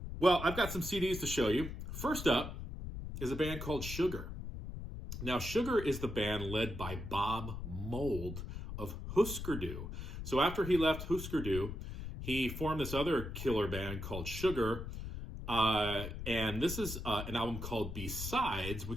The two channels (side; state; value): left; noise; rumble, 7 dB below the sound